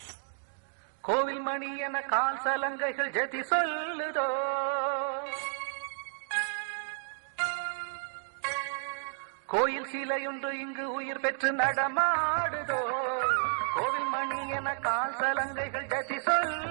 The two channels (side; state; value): left; silent; digital silence